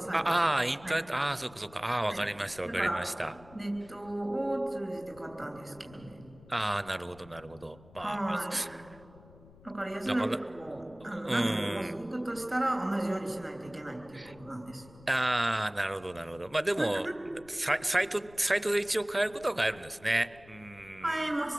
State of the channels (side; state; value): left; noise; rumble, 22 dB below the sound